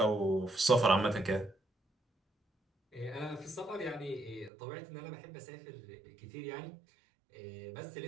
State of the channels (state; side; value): drops out; left; at 4.5 s